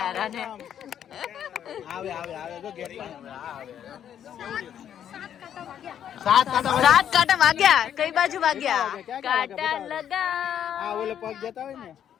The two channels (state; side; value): quieter; right; 9.6 dB